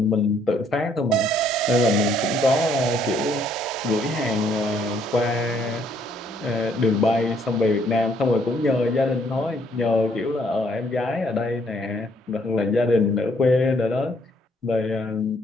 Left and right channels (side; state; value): both; normal; correlation 0.67